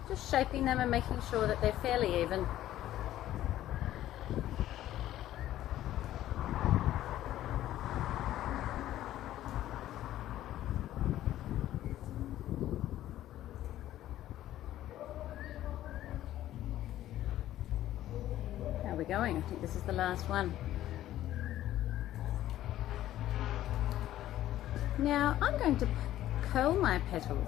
just shaping them and making sure that they're fairly even. We're going. I think this is the last one. Now I'm going to curl my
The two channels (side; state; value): right; quieter; 13.4 dB